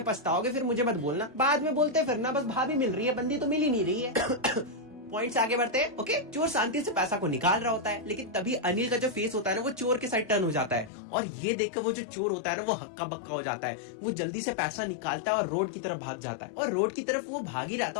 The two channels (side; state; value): right; drops out; at 10.9 s